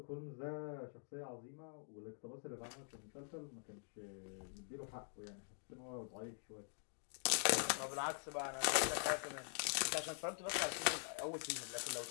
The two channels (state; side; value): silent; right; digital silence